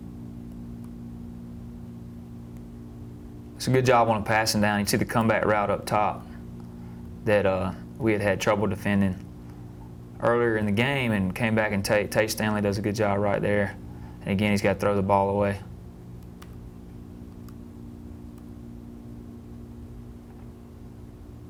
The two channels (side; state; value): both; identical; correlation 1.00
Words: It's a good job on a passing down. You see the comeback route up top that we had trouble defending earlier in the game and came back and Tay Stanley does a good job right there. And again, he's got to throw the ball away.